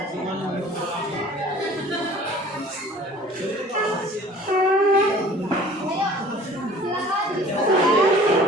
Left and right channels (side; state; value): both; normal; correlation 0.48